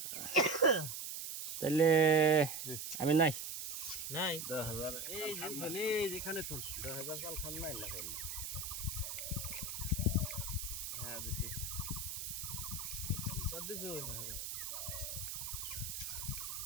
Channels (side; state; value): right; noise; hiss, 5 dB below the sound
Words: তাহলে আমি নাই নাই 10,000 এই যেখানে তুন 10,000 চাল খান নাই না করলে হ্যাঁ দিছি কত দিছ